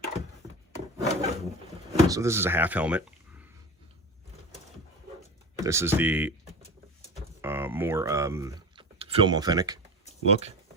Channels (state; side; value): normal; both; correlation 0.29